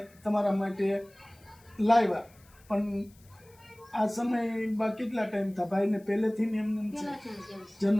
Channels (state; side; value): noise; left; hiss, 29 dB below the sound